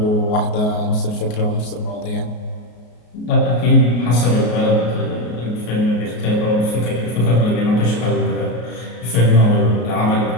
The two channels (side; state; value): right; late; 33 ms